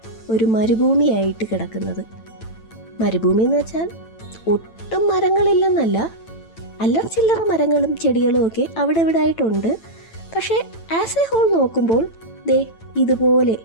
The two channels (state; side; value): late; right; 9.0 ms